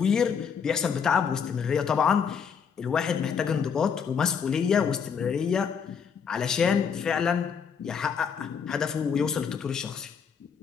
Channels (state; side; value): quieter; right; 6.7 dB